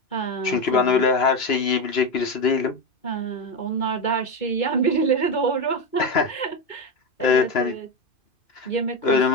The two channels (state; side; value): late; right; 2.9 ms